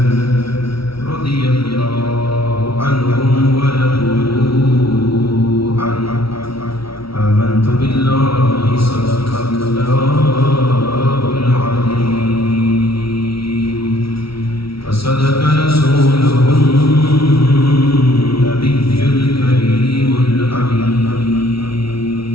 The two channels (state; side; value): late; right; 0.75 ms